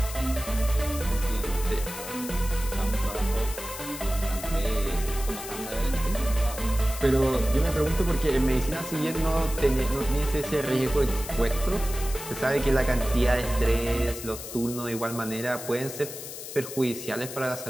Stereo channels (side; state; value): left; noise; hiss, 10 dB below the sound